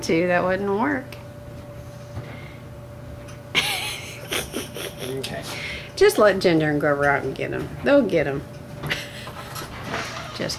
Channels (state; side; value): identical; both; correlation 1.00